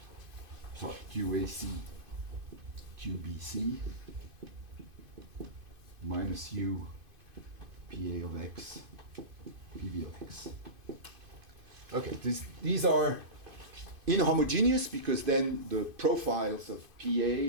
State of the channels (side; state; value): left; late; 2.5 ms